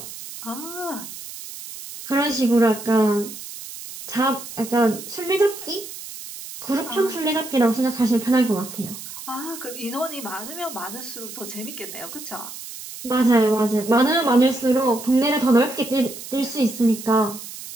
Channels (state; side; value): noise; right; hiss, 12 dB below the sound